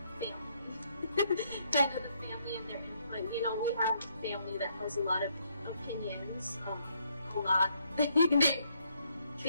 family, kind of the family and their input. You know, we have a family that has a lot of opinions,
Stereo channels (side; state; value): both; inverted; correlation -0.72